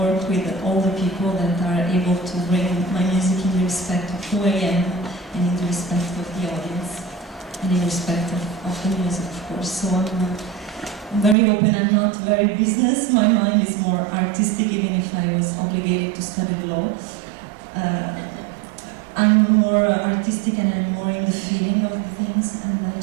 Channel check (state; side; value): drops out; left; at 11.4 s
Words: with all the people that are able to bring my music in the respect of who I am and in the respect of the audience and in respect of the music, of course. So I'm very open. I'm not very business. My mind is more artistic, even if I was obligated to study law. I'm more artistic and I'm more in the feeling of the things, and I